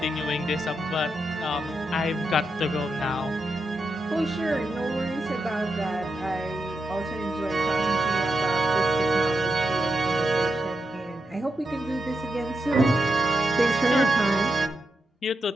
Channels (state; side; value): normal; both; correlation 0.86